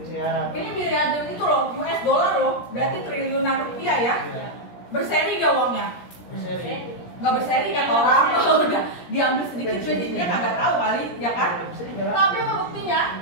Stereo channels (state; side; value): late; right; 17 ms